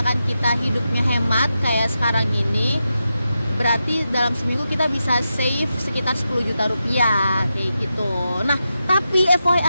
kita hidupnya hemat kayak sekarang ini, berarti dalam seminggu kita bisa save sekitar 10 juta rupiah kayak gitu. Nah, tapi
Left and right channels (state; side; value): inverted; both; correlation -0.89